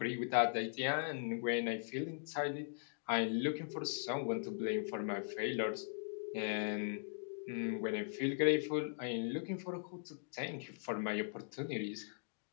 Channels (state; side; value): silent; right; digital silence